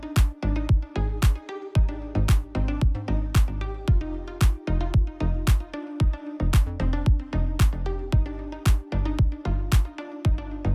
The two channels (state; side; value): identical; both; correlation 1.00